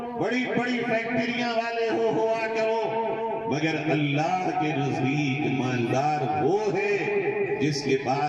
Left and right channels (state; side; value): identical; both; correlation 1.00